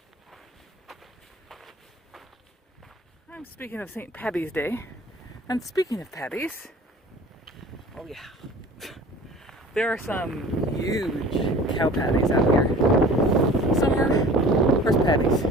I'm speaking of St. Paddy's Day, and speaking of patties, oh yeah, there are some huge cow patties out here. Some are horse patties.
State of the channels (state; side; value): normal; both; correlation 0.44